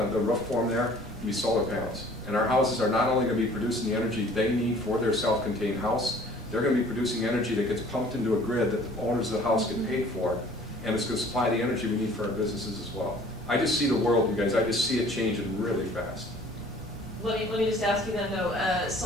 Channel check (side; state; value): right; noise; rumble, 16 dB below the sound